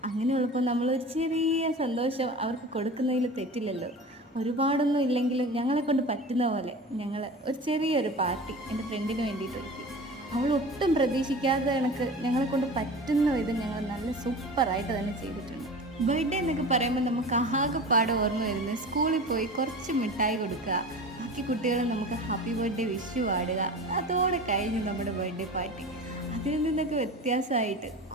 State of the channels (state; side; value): normal; both; correlation 0.34